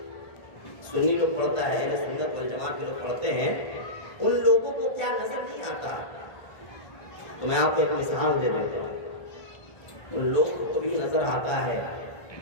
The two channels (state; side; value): late; right; 1.4 ms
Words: سنی لوگ پڑھتا ہے, اہل سنت والجماعت کے لوگ پڑھتے ہیں, ان لوگوں کو کیا نظر نہیں آتا. تو میں آپ کو ایک مثال دے دیتا ہوں. ان لوگوں کو بھی نظر آتا ہے,